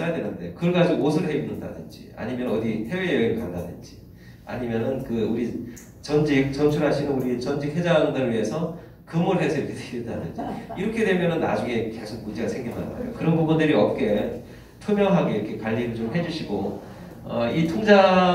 되는데 그걸 가지고 옷을 해 입는다든지 아니면 어디 해외여행을 간다든지 아니면은 우리 전출하시는 우리 전직 회장들을 위해서 금을 해서 이렇게 드린다든지 이렇게 되면은 나중에 계속 문제가 생긴단 말이에요. 그런 부분들이 없게 투명하게 이렇게 관리를 좀 해주시고 이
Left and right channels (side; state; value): both; identical; correlation 1.00